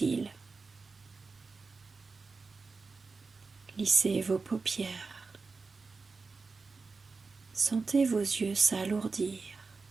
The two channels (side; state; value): left; quieter; 4.3 dB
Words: Lissez vos paupières. Sentez vos yeux s'alourdir.